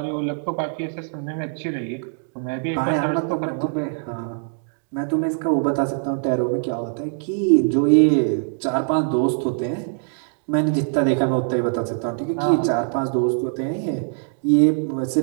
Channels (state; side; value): silent; left; digital silence